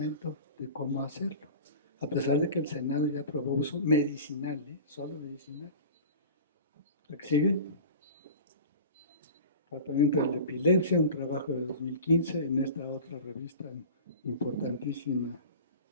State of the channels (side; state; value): both; inverted; correlation -0.37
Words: de cómo hacerlo. A pesar de que el Senado ya aprobó uso medicinal, solo medicinal. ¿La que sigue? Tratamiento de la epilepsia, un trabajo de 2015 en esta otra revista importantísima